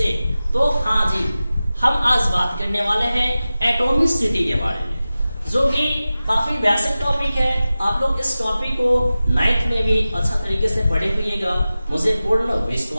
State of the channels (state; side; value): inverted; both; correlation -0.95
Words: तो हाँ जी, हम आज बात करने वाले हैं एटॉमिसिटी के बारे में, जो कि काफी बेसिक टॉपिक है। आप लोग इस टॉपिक को 9th में भी अच्छा तरीके से पढ़े हुएगा, मुझे पूर्ण